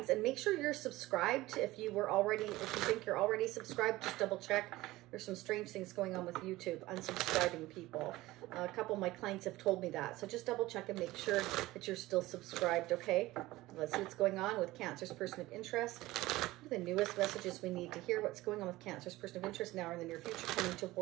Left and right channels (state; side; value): quieter; left; 18.2 dB